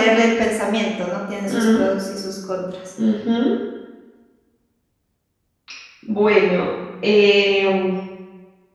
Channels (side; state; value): both; identical; correlation 1.00